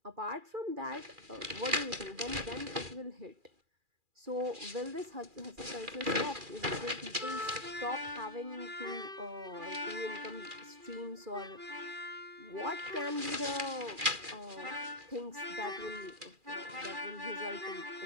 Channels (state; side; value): late; left; 2.4 ms